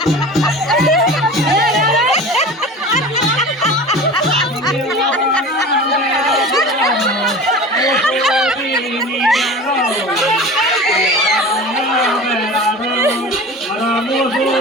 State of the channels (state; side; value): normal; both; correlation 0.36